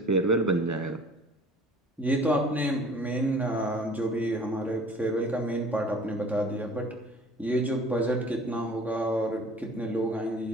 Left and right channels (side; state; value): both; normal; correlation 0.48